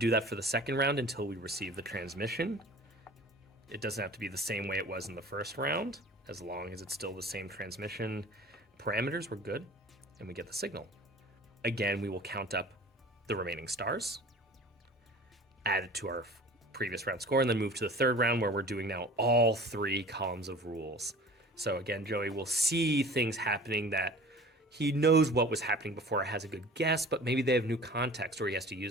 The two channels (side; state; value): both; normal; correlation 0.43